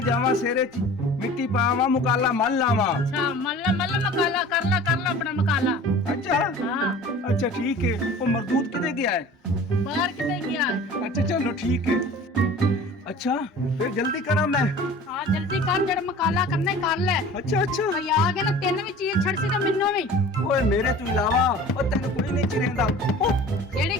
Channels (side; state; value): both; normal; correlation 0.42